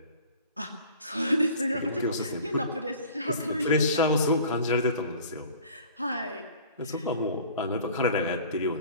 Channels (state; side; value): inverted; both; correlation -0.46